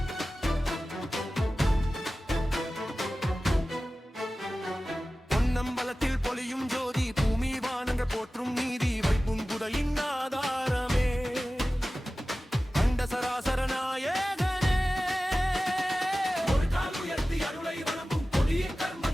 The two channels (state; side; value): normal; both; correlation 0.96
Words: பொன்னம்பலத்தில் பொலியும் ஜோதி, பூமி வானங்கள் போற்றும் நீதி. வைப்பும் புதையின் ஆதாரமே, அண்ட சராசர நாயகனே. ஒரு கால் உயர்த்தி அருளை வழங்கும், கொடிய